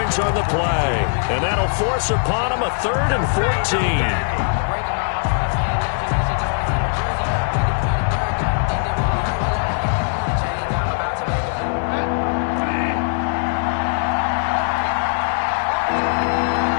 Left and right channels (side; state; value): right; silent; digital silence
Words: on the play. And that'll force upon him a 3rd and 14.